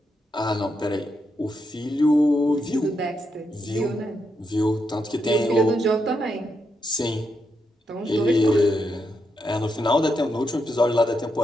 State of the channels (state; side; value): normal; both; correlation 0.82